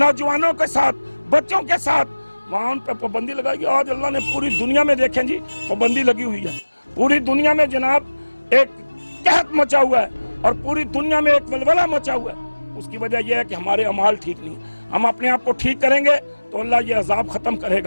کے ساتھ، بچوں کے ساتھ، وہاں ان پہ پابندی لگائی گئی۔ آج اللہ نے پوری دنیا میں دیکھیں جی پابندی لگی ہوئی ہے، پوری دنیا میں جناب ایک قحط مچا ہوا ہے اور پوری دنیا میں ایک ولولہ مچا ہوا ہے۔ اس کی وجہ یہ ہے کہ ہمارے اعمال ٹھیک نہیں ہیں۔ ہم اپنے آپ کو ٹھیک کریں گے تو اللہ یہ عذاب ختم کرے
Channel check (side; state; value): both; inverted; correlation -1.00